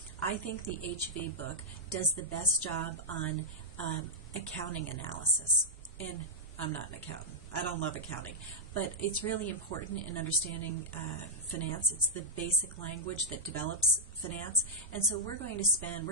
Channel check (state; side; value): normal; both; correlation -0.06